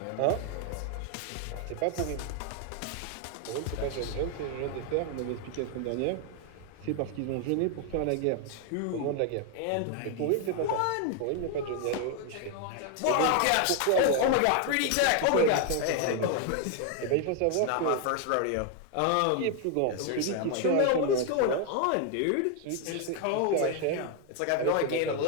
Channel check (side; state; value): both; different; correlation 0.00